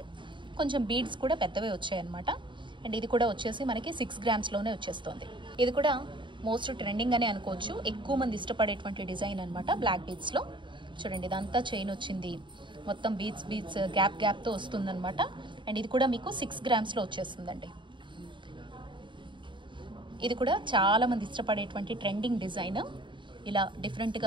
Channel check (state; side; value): late; left; 0.23 ms